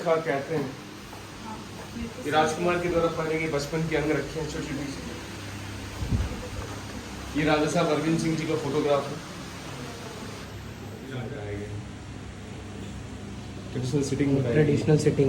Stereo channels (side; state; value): both; identical; correlation 1.00